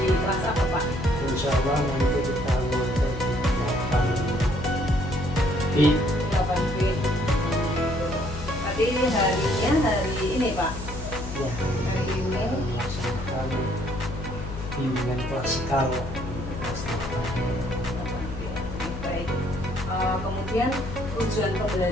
kelas apa Pak? Insya Allah nanti kita mulai di 8B. Tapi ini harinya hari ini Pak? ya Hari ini melaksanakan bimbingan klasikal. baik. Kemudian tujuan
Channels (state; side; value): noise; left; hum, 8 dB below the sound